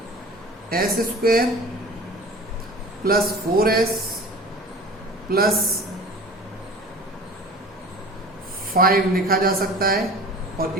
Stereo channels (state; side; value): normal; both; correlation 0.40